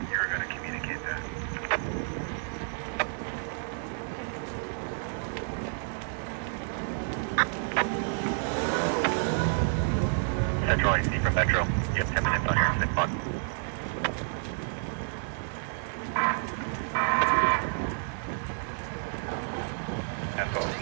You're going to communicate that. Central AC from Metro. You have 10 minutes on your incident clock. Cancel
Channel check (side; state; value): left; silent; 58 dB below the other